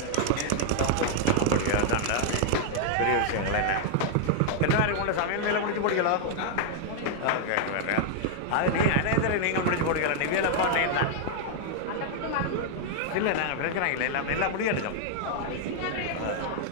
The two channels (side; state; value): both; different; correlation 0.00